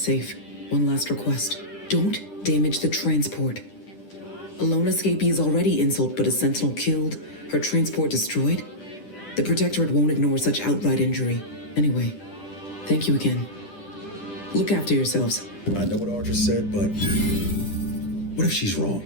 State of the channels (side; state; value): right; late; 10 ms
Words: One last request. Don't damage the transport. A lone escapee is already insult, but a sentinel killed, her transport destroyed? The Protectorate won't ignore such outright injury. Anyway, thank you again. Look after yourselves. I know what Audra said, but what if she's wrong?